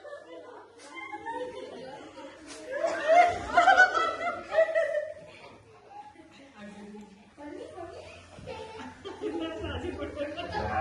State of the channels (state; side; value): identical; both; correlation 1.00